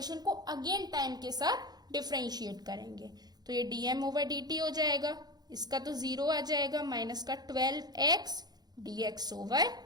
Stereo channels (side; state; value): left; late; 0.19 ms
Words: को अगेन टाइम के साथ डिफरेंशिएट करेंगे, तो ये डीएम ओवर डी टी हो जाएगा, इसका तो 0 आ जाएगा, माइनस का 12x dx over